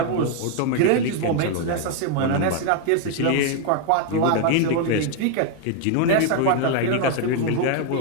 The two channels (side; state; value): both; different; correlation 0.00